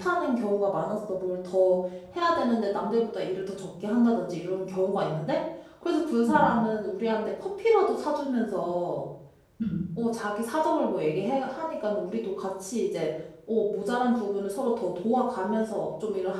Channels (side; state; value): both; identical; correlation 1.00